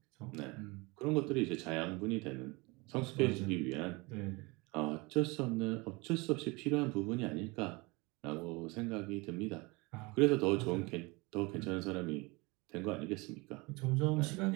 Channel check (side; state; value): left; quieter; 25.9 dB